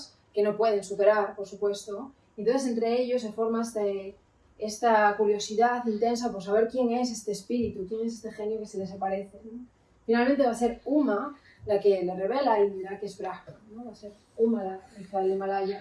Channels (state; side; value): identical; both; correlation 1.00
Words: que no pueden superar, por supuesto. Entonces, entre ellos se forma esta curiosidad intensa por saber quién es este espíritu, quién es este genio que se les aparece, ¿no? Finalmente va a ser Uma la que le revela a Indra que es Brahma, ¿no? Va a ser Uma, la hija del